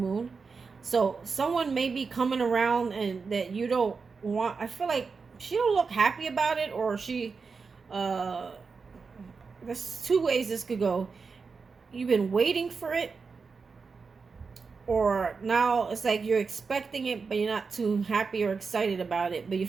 So someone may be coming around and that you don't want. I feel like she don't look happy about it, or she, there's 2 ways this could go. You've been waiting for it, or now it's like you're expecting it, but you're not too happy or excited about it, but you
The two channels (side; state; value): left; quieter; 4.9 dB